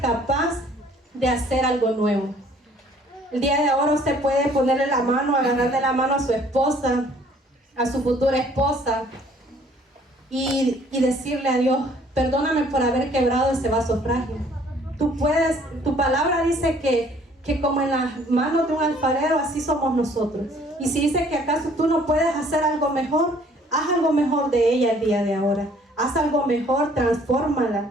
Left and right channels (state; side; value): normal; both; correlation 0.58